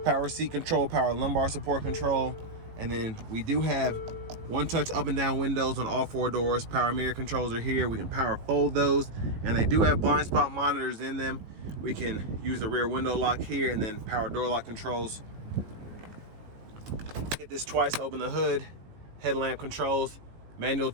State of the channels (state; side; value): late; left; 18 ms